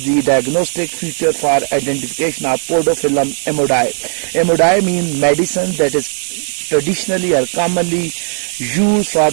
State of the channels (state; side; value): silent; left; 67 dB below the other